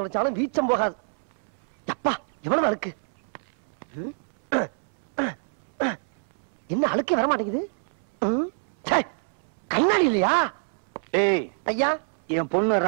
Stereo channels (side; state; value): left; silent; 61 dB below the other